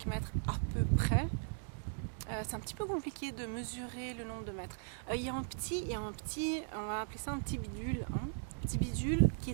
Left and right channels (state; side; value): silent; left; digital silence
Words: mètres à peu près. C'est un petit peu compliqué de mesurer le nombre de mètres. Il y a un petit, on va appeler ça un petit bidule. Hein, petit bidule qui